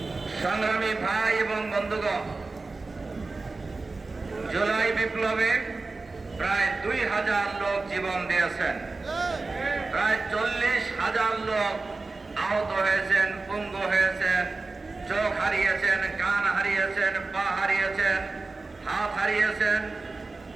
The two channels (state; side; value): quieter; left; 3.6 dB